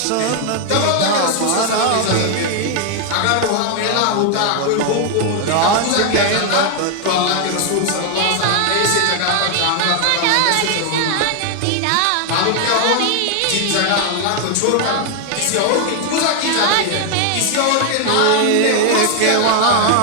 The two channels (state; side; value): different; both; correlation 0.00